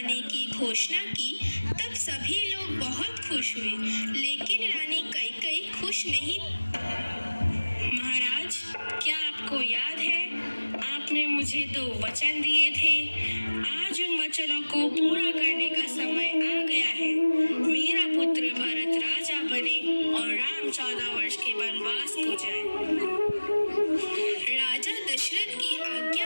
की घोषणा की तब सभी लोग बहुत खुश हुए, लेकिन रानी कैकेयी खुश नहीं। महाराज, क्या आपको याद है, आपने मुझे 2 वचन दिए थे। आज उन वचनों को पूरा करने का समय आ गया है। मेरा पुत्र भरत राजा बने और राम 14 वर्ष के वनवास को जाए। राजा दशरथ की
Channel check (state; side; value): inverted; both; correlation -1.00